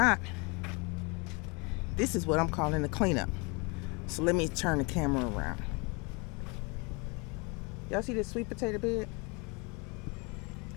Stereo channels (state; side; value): quieter; right; 30.0 dB